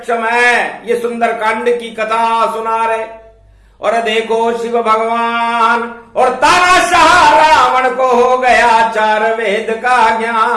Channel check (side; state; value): both; identical; correlation 1.00